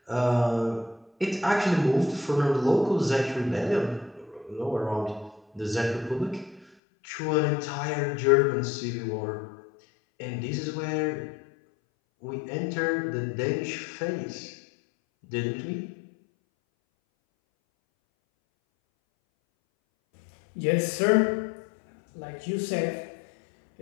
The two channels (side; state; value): right; drops out; at 6.7 s